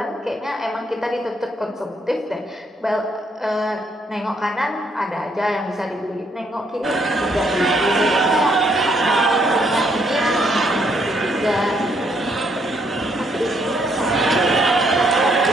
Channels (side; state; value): both; normal; correlation 0.71